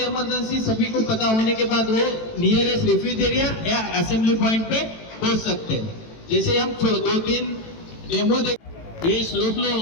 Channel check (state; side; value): late; right; 18 ms